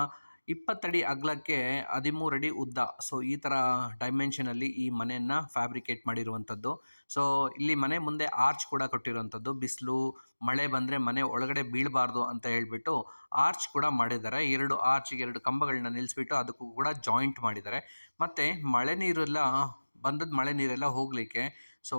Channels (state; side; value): inverted; both; correlation -1.00